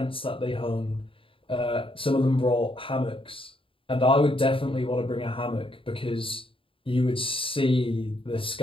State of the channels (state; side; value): late; right; 0.26 ms